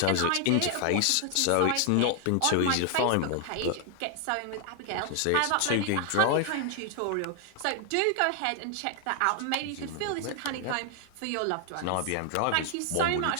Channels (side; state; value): both; different; correlation 0.00